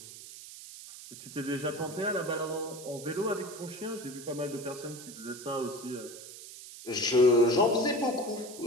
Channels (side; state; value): right; noise; hiss, 14 dB below the sound